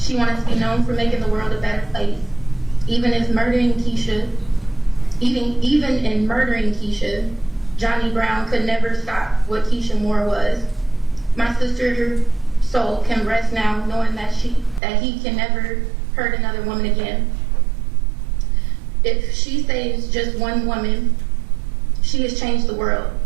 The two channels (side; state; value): left; drops out; at 14.8 s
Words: wanted to be known for making the world a better place. Even in murdering Keisha, Johnny Brown could never stop what Keisha Moore was. My sister's soul can rest now knowing that he can never hurt another woman again. If she saves just one woman, she has changed the world.